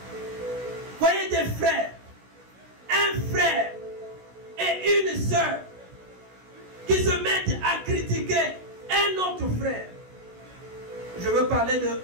Voyez des frères, un frère et une sœur qui se mettent à critiquer un autre frère. Je veux parler de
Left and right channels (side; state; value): left; late; 16 ms